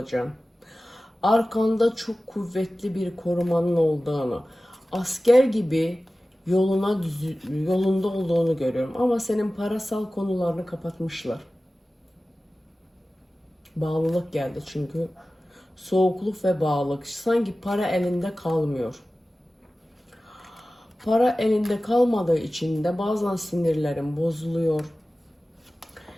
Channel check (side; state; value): both; normal; correlation 0.96